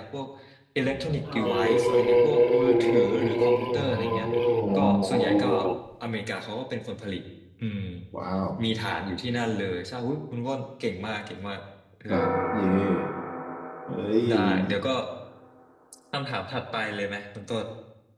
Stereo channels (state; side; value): identical; both; correlation 1.00